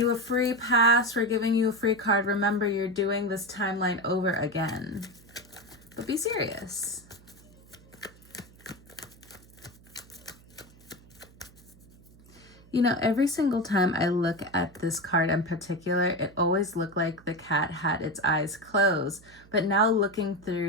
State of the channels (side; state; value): right; noise; hum, 25 dB below the sound